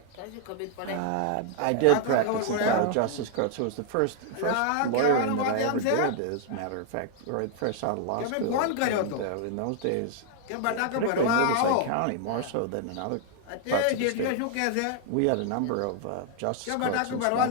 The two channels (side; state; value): both; different; correlation 0.00